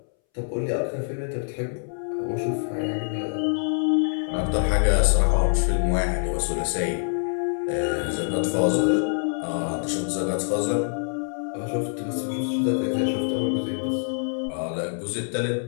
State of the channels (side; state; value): right; silent; 62 dB below the other